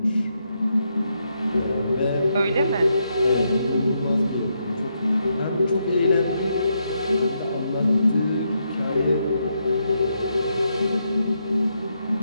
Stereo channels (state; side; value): inverted; both; correlation -0.80